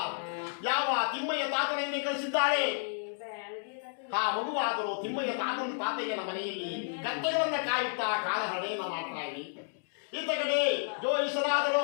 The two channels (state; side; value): silent; right; digital silence